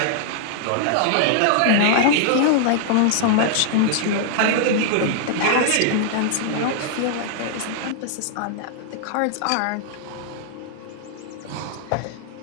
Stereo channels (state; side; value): different; both; correlation -0.01